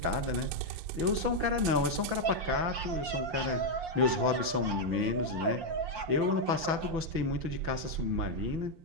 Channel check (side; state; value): left; late; 6.0 ms